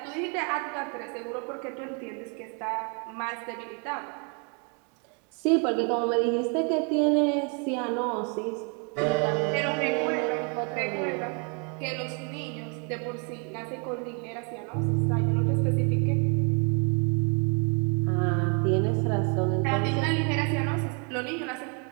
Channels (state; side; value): quieter; left; 36.6 dB